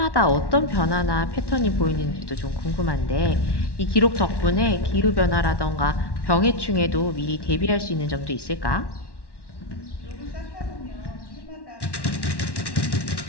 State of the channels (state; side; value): late; right; 1.1 ms